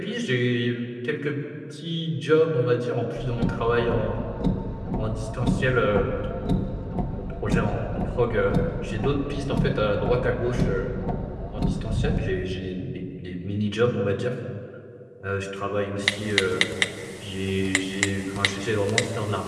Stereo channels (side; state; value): both; identical; correlation 1.00